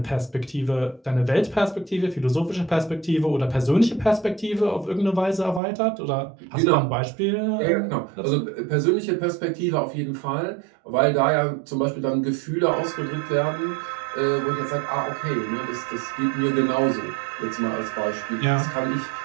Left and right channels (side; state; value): left; drops out; at 5.6 s